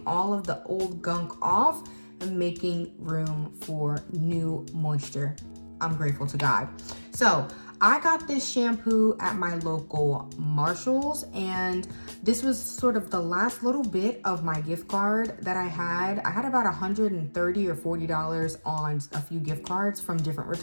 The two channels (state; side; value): inverted; both; correlation -1.00